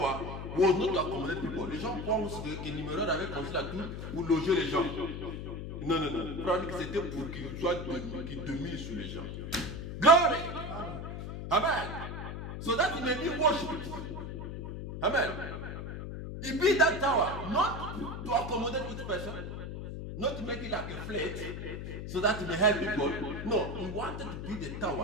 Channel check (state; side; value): noise; left; hum, 7 dB below the sound